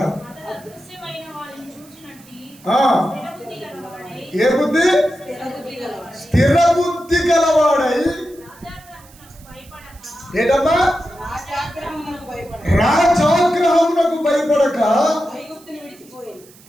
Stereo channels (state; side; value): noise; right; hiss, 25 dB below the sound